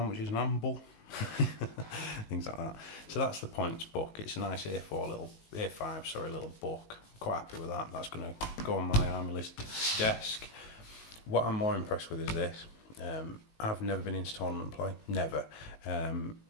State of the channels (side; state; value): right; late; 19 ms